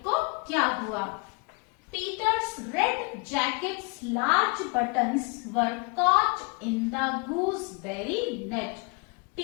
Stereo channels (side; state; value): right; quieter; 32.1 dB